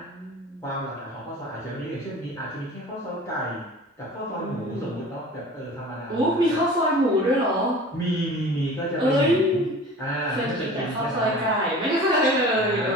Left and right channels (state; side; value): normal; both; correlation 0.41